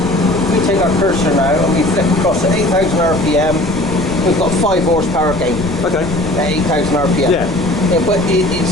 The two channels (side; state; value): left; noise; rumble, 11 dB below the sound